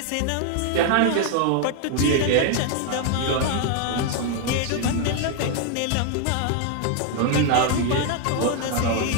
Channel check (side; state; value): both; different; correlation 0.00